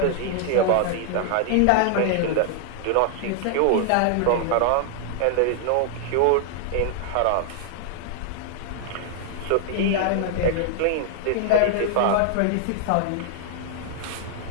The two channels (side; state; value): both; different; correlation 0.00